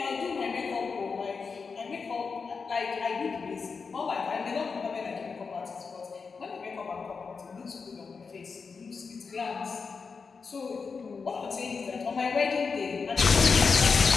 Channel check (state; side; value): quieter; right; 5.1 dB